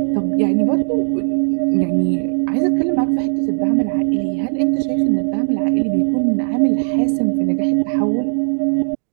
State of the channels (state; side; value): silent; left; digital silence